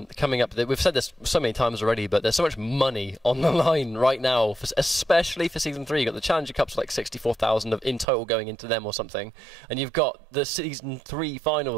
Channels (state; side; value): drops out; left; at 8.1 s